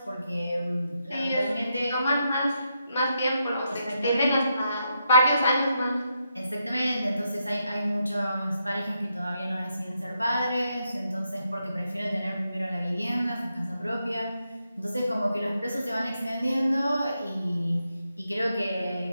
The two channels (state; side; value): inverted; both; correlation -0.82